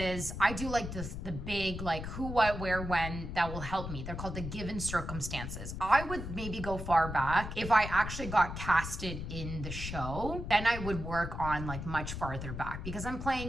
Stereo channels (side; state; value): left; noise; rumble, 6 dB below the sound